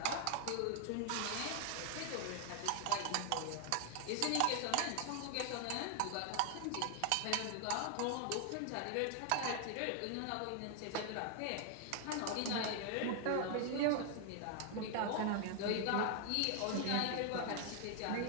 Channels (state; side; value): different; both; correlation 0.00